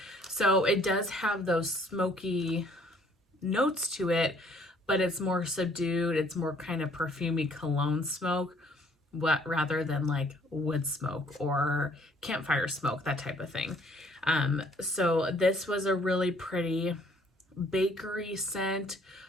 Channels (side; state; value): both; normal; correlation 0.61